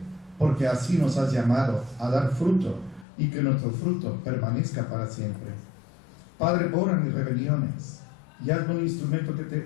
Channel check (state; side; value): drops out; right; at 3.1 s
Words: porque así nos has llamado a dar fruto, y que nuestro fruto permanezca para siempre. Padre, borra mis rebeliones, y hazme un instrumento que